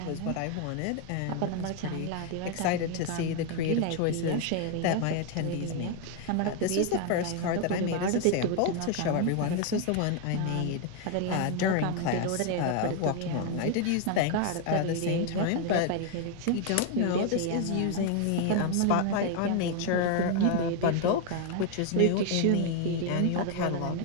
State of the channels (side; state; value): both; different; correlation 0.01